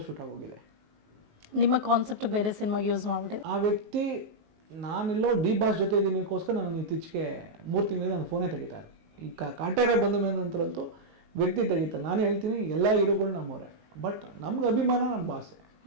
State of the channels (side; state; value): left; late; 19 ms